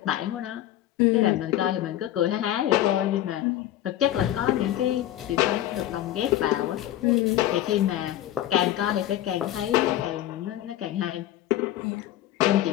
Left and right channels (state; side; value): quieter; right; 13.1 dB